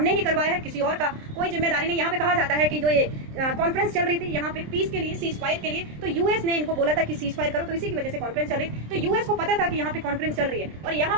ही करवाया है, किसी और का कोई जिम्मेदारी नहीं। यहाँ पे कहा जाता है कि जो ये कॉन्फ्रेंस चल रही थी यहाँ पे पीस के लिए, सीज फायर के लिए, तो यूएस ने इनको बोला था कि सीज फायर करो, तो इसी की वजह से कॉन्फ्रेंस चल रही। तो यूएस को पता था कि यहाँ पे कॉन्फ्रेंस चल रही है, और यहाँ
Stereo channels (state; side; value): late; left; 27 ms